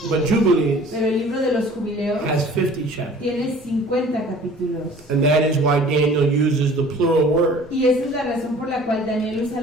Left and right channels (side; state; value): both; normal; correlation 0.48